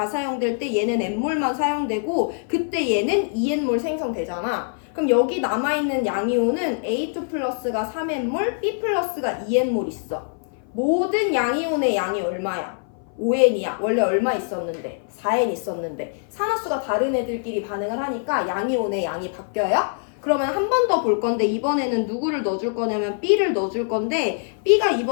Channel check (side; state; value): right; silent; 58 dB below the other